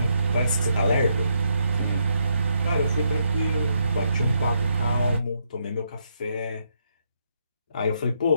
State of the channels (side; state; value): both; inverted; correlation -0.77